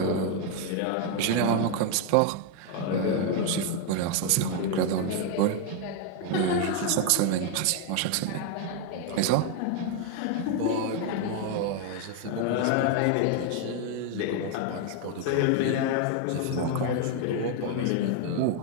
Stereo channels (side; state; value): both; different; correlation 0.01